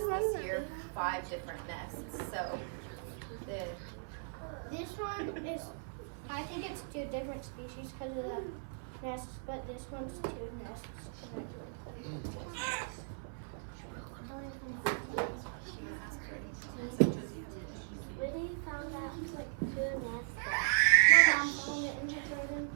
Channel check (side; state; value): left; silent; 53 dB below the other